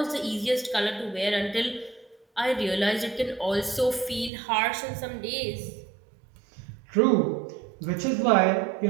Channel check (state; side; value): drops out; left; at 4.3 s